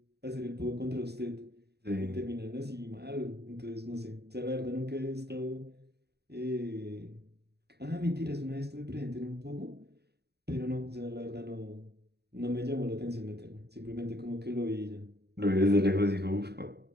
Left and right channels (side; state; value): left; late; 0.48 ms